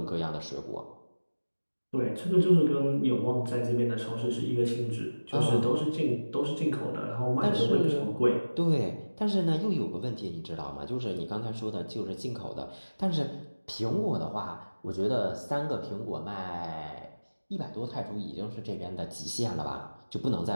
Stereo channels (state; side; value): inverted; both; correlation -1.00